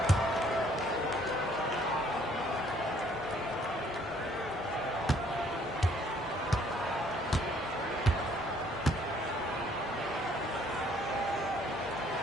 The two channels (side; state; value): both; normal; correlation 0.62